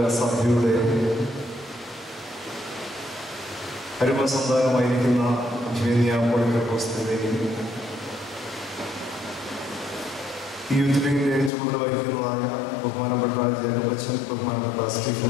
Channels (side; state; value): right; drops out; at 11.5 s